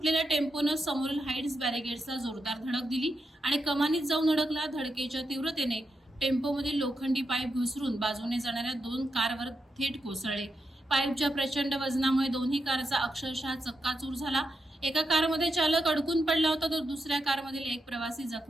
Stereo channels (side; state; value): both; normal; correlation 0.85